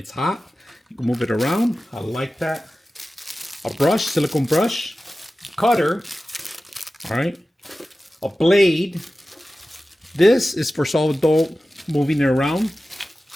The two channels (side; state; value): both; normal; correlation 0.95